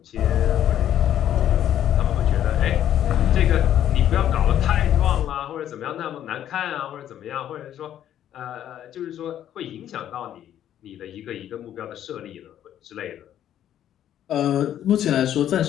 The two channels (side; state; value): right; quieter; 11.0 dB